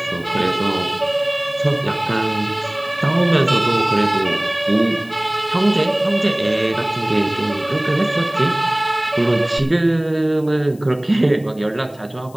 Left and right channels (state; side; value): noise; left; hiss, 26 dB below the sound